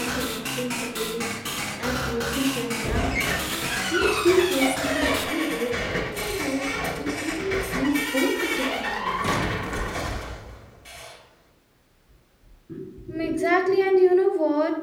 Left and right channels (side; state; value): both; identical; correlation 1.00